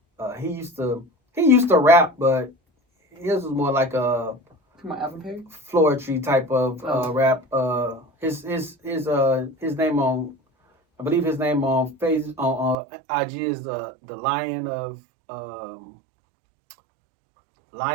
He used to rap, but his was more like a floetry type of rap. His name on, I believe his name on IG is the Lion of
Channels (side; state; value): left; drops out; at 12.8 s